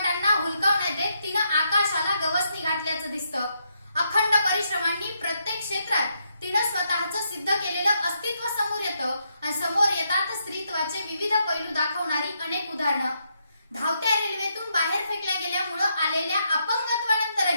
हुलकावण्यात देत तिनं आकाशाला गवसणी घातल्याचं दिसतं. अखंड परिश्रमांनी प्रत्येक क्षेत्रात तिनं स्वतःचं सिद्ध केलेलं अस्तित्व समोर येतं आणि समोर येतात स्त्रीत्वाचे विविध पैलू दाखवणारी अनेक उदाहरणं. धावत्या रेल्वेतून बाहेर फेकल्या गेल्यामुळे आलेल्या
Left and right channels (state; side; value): inverted; both; correlation -0.79